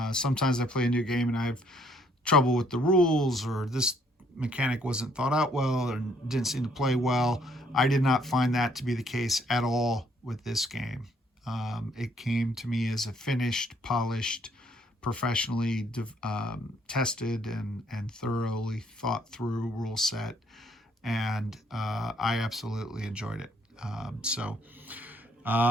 Sometimes I play a new game and I have trouble with the rules, or this mechanic wasn't thought out well or didn't seem to play well. I did not find that to be the case at all with this game. It came to me as a finished, polished, professionally tested and thoroughly thought through rule set, and I absolutely enjoyed it. So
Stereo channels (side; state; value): both; normal; correlation 0.66